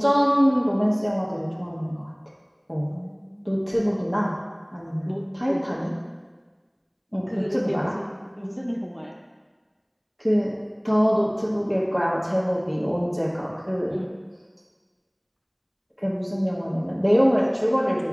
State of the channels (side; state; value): both; identical; correlation 1.00